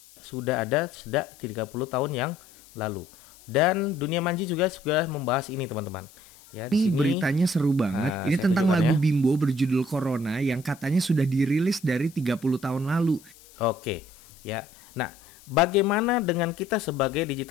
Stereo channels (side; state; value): left; noise; hiss, 24 dB below the sound